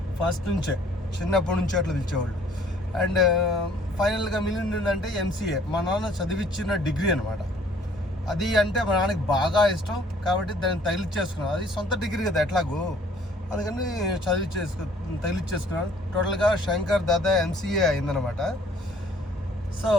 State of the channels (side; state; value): both; normal; correlation 0.57